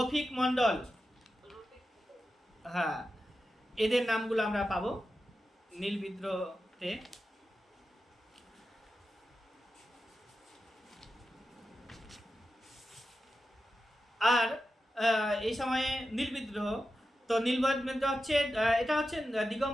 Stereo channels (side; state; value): both; normal; correlation 0.91